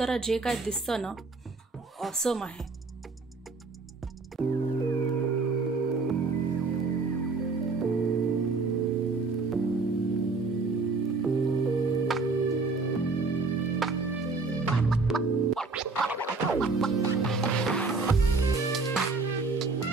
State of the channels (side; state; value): left; quieter; 4.0 dB